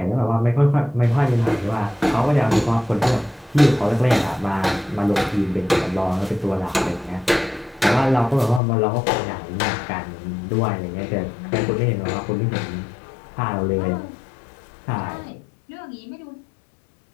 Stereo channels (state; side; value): drops out; right; at 8.6 s